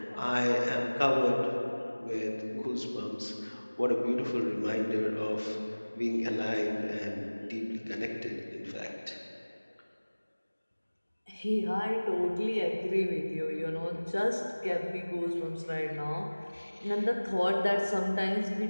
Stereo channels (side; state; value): both; inverted; correlation -1.00